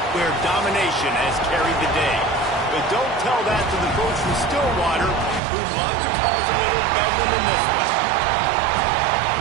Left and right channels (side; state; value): left; drops out; at 5.4 s